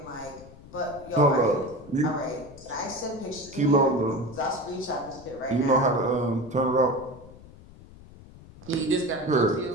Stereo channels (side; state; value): left; noise; rumble, 20 dB below the sound